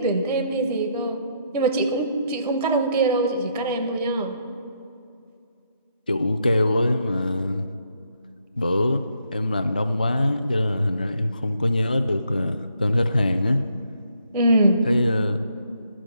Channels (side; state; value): both; inverted; correlation -0.73